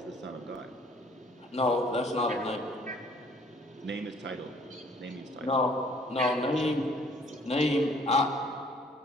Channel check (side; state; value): both; normal; correlation 0.59